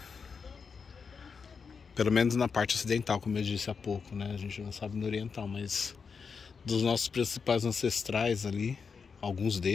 Pelo menos na parte ocidental, como eu disse há pouco, né? A gente não sabe no oriental, mas dos nossos principais ancestrais ali, alguns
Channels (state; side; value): quieter; right; 5.6 dB